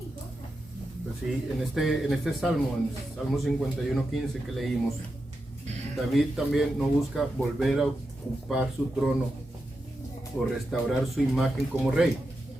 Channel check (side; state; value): both; normal; correlation 0.88